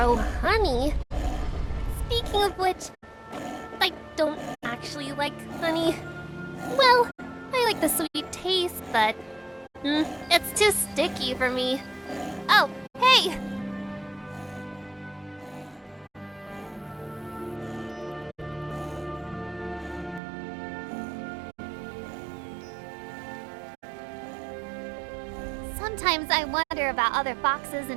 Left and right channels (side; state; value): left; drops out; at 20.2 s